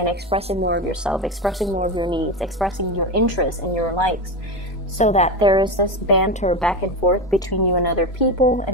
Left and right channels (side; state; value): both; normal; correlation 0.18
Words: expressing more of yourself, expressing more of your needs, expressing your interests and your likes, so that there is this banter back and forth between you and other people,